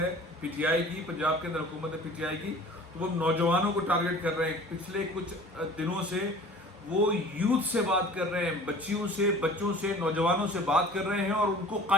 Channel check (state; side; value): normal; both; correlation 0.44